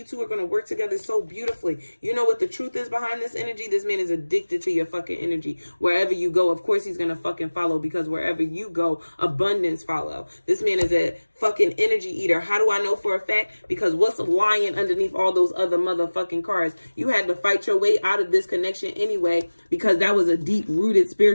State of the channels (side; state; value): both; inverted; correlation -1.00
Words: are going to work together so beautifully. You know what the truth is behind this energy? This man is addicted to your fucking energy. Wherever you go, of course he's going to fucking follow, because wherever you go, abundance follow. This man is a fucking energy eater. How do I know for a fact? Because what's lying underneath all those other motherfucking cards? You had to fight your way out of this connection anyway, because that was a deep rooted